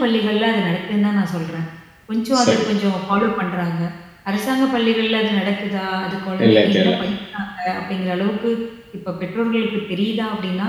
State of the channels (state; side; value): identical; both; correlation 1.00